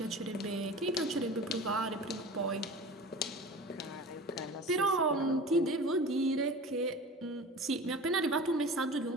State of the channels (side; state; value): both; normal; correlation 0.37